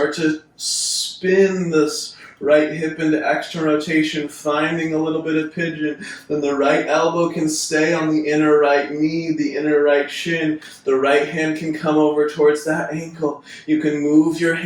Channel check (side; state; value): both; identical; correlation 1.00